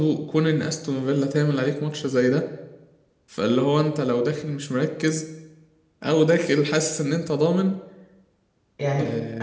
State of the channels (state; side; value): identical; both; correlation 1.00